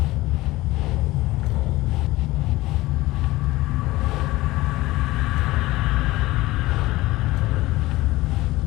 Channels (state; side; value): quieter; right; 18.6 dB